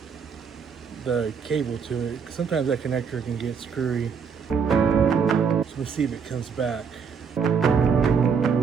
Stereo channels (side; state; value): left; quieter; 6.2 dB